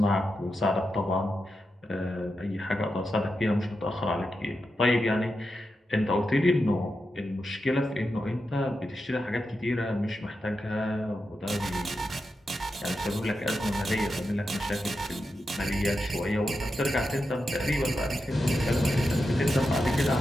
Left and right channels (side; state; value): both; normal; correlation 0.88